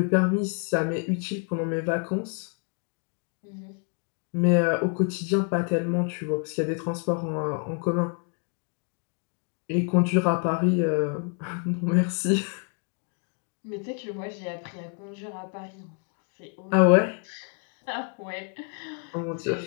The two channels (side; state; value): right; quieter; 39.5 dB